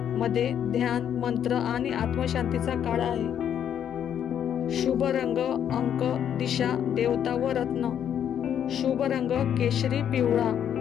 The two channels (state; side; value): quieter; right; 9.3 dB